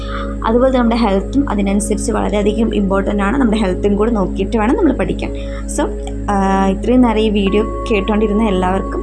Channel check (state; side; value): identical; both; correlation 1.00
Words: അതുപോലെ നമ്മുടെ ഹെൽത്തും അതിനനുസരിച്ച് വളരെയധികം ഇമ്പോർട്ടൻ്റ് ആണ്. നമ്മുടെ ഹെൽത്തും കൂടി നോക്കിയിട്ട് വേണം നമ്മൾ പഠിക്കാൻ. സോ ഇത്രയും നേരം ഈ വീഡിയോ കേട്ടുകൊണ്ടിരുന്ന എല്ലാവർക്കും